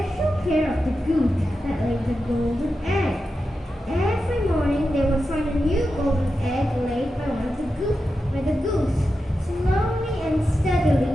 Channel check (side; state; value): both; normal; correlation 0.90